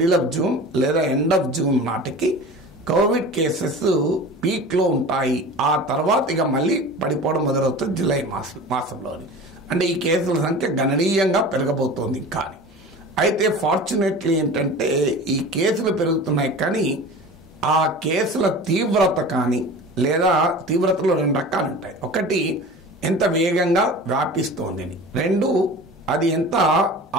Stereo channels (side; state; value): both; normal; correlation 0.36